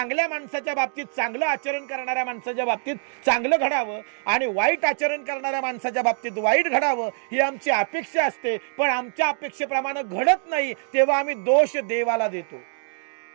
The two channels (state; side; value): silent; left; digital silence